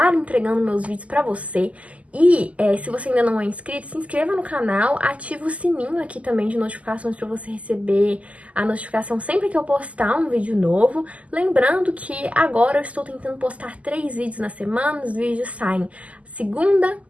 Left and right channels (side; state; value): left; late; 0.068 ms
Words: entregando meus vídeos pra você. E se você ainda não é inscrito, se inscreva no canal, ativa o sininho aqui também de notificações para você receber a notificação sempre que eu postar um vídeo novo. Lembrando que agora eu estou tentando postar 3 vídeos na semana, os vídeos saem segunda,